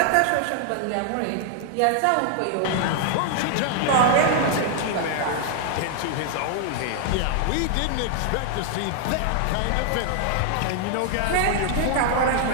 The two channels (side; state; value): both; different; correlation 0.00